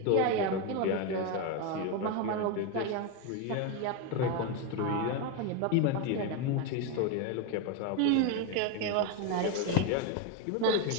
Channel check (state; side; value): different; both; correlation 0.02